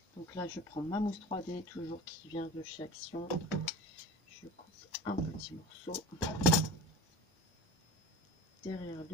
Donc là, je prends ma mousse 3D, toujours qui vient de chez Action. Je coupe un petit morceau derrière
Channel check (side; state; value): both; normal; correlation 0.36